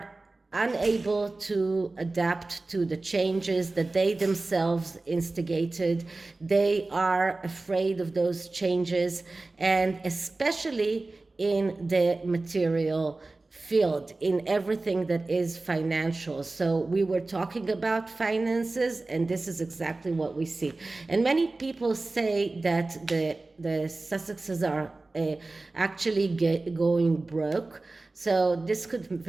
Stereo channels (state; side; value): quieter; left; 3.3 dB